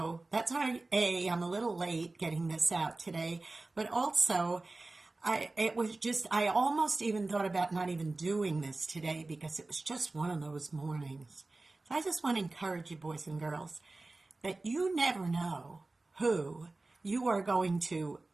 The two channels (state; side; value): quieter; left; 3.2 dB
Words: that's why, I'm a little late getting this out today, but also I almost even thought about not even doing this today because it was just one of those mornings. So I just want to encourage you, boys and girls, that you never know who you are going to